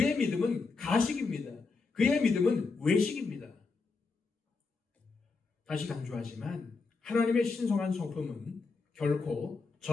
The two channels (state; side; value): quieter; right; 4.3 dB